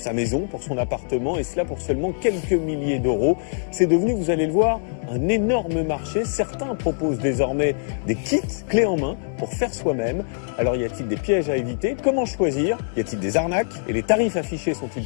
maison, pour son appartement, et cela pour seulement quelques milliers d'euros. C'est devenu, vous allez le voir, un énorme marché. Certains proposent désormais des kits clés en main pour faire soi-même. Alors y a-t-il des pièges à éviter? Comment choisir? Y a-t-il des arnaques? Et les tarifs affichés sont-ils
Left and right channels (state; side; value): silent; right; digital silence